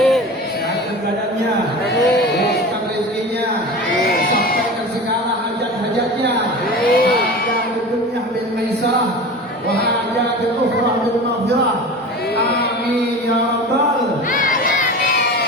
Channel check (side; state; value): both; normal; correlation 0.33